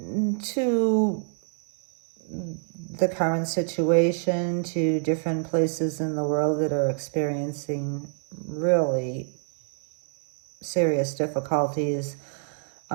to the current situation, to different places in the world that are experiencing really serious difficulties,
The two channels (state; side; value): silent; left; digital silence